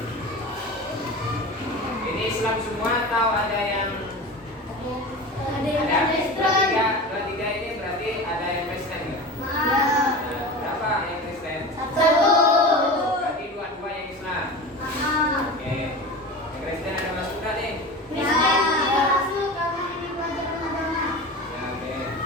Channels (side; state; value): both; normal; correlation 0.31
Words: Ini Islam semua atau ada yang ada? Dua tiga ini berarti ada yang Kristen ya? Nah, berapa yang Kristen? Satu. Berarti dua yang Islam. Oke. Yang Kristen ada masuk nggak nih? Ya.